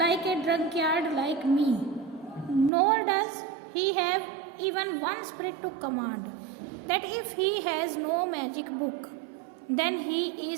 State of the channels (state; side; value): drops out; left; at 2.7 s